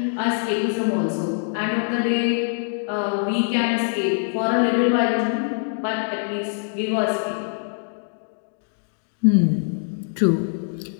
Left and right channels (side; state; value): right; silent; digital silence